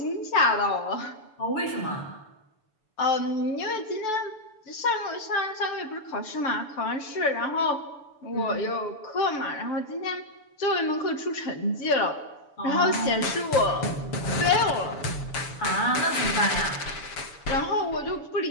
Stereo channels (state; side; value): late; right; 6.9 ms